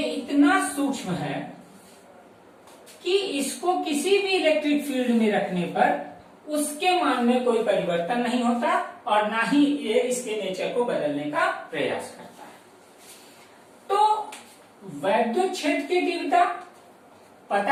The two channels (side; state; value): both; identical; correlation 1.00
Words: इतना सूक्ष्म है कि इसको किसी भी इलेक्ट्रिक फील्ड में रखने पर उसके मान में कोई परिवर्तन नहीं होता, और ना ही ये इसके नेचर को बदलने का प्रयास करता है। तो वैद्युत क्षेत्र की तीव्रता